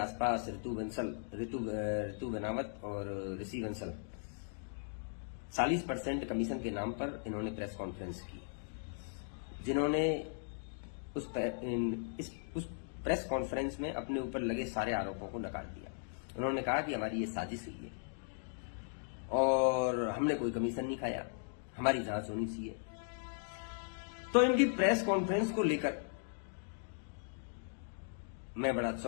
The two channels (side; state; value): right; silent; digital silence